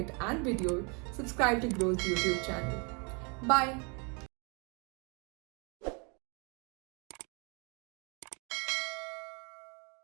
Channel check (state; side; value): quieter; left; 33.6 dB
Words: and video, subscribe to Grow's YouTube channel. Bye.